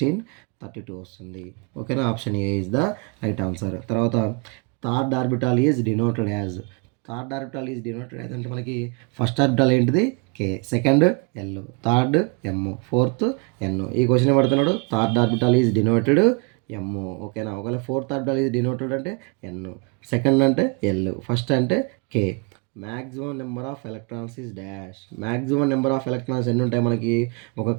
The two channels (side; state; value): left; quieter; 31.5 dB